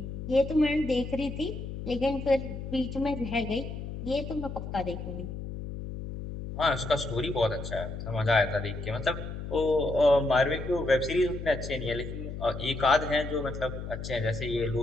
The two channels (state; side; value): noise; left; hum, 7 dB below the sound